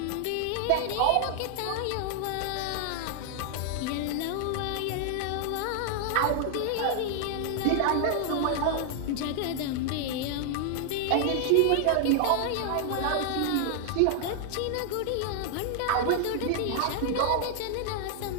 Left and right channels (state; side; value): different; both; correlation 0.00